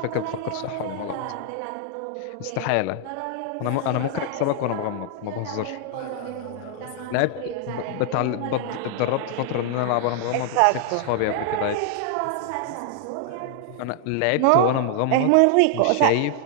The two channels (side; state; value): both; different; correlation 0.00